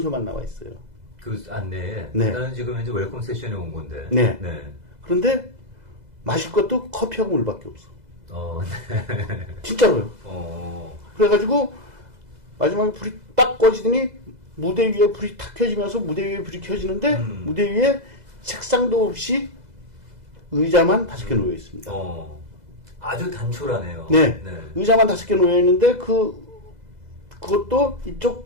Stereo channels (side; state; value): left; late; 2.0 ms